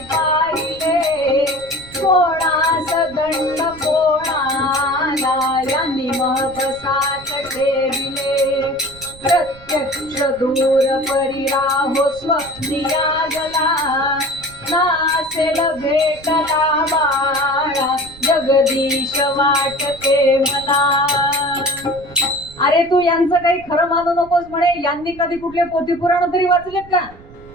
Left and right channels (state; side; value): noise; right; rumble, 20 dB below the sound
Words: पाहिले, कोणास दंड कोणाला यांनी महबसात ठेविले. प्रत्यक्ष दूर परिराहो स्वप्निया गला, नासेल भेटला बाळा जगदीश वाटते मला. अरे तू यांचं काही खरं मानू नकोस म्हणे. यांनी कधी कुठले पोथी पुराण तरी वाचलेत का?